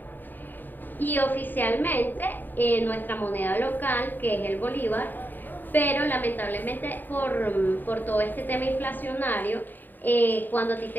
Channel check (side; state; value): right; late; 0.090 ms